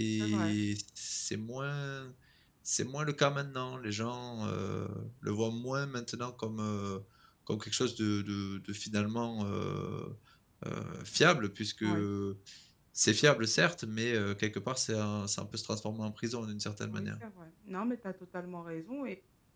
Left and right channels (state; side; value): identical; both; correlation 1.00